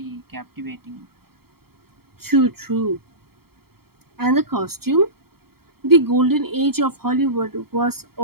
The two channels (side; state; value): left; late; 0.95 ms